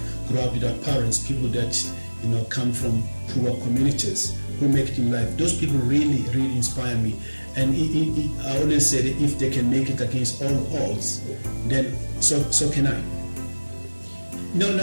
grow up without parents, people that, come from poor communities who make it in life, those people really, really inspire me. And I always say that if they can make it against all odds, then so can I.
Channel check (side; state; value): both; inverted; correlation -1.00